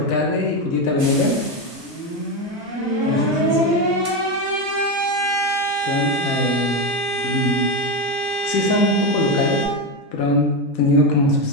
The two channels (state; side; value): normal; both; correlation 0.12